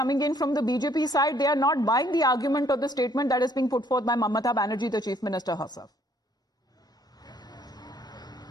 in from the BJP side, they are not buying the argument or the statement that is being put forth by Mamata Banerjee, the Chief Minister herself.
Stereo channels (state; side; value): normal; both; correlation 0.64